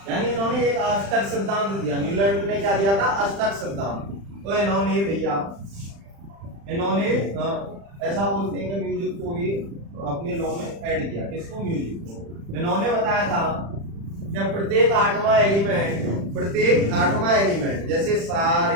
यानी इन्होंने एक अष्टक सिद्धांत दिया। न्यूलैंड ने क्या दिया था? अष्टक सिद्धांत। तो इन्होंने भैया ऐसा बोलते हैं कि म्यूजिक को भी अपने लॉ में ऐड किया। किसको? म्यूजिक को। इन्होंने बताया था कि प्रत्येक आठवां एलिमेंट जैसे सा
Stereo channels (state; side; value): late; left; 35 ms